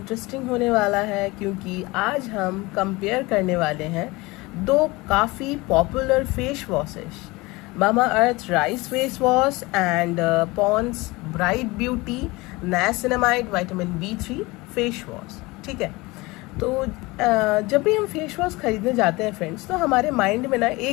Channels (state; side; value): quieter; right; 22.7 dB